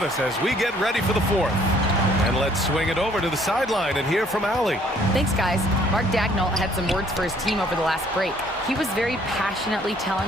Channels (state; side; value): normal; both; correlation 0.61